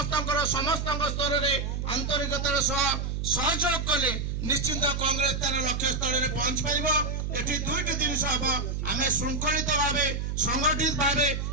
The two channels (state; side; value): noise; right; hum, 2 dB below the sound